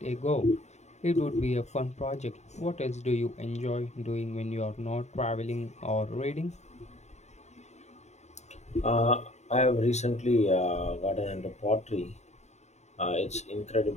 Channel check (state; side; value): late; right; 0.33 ms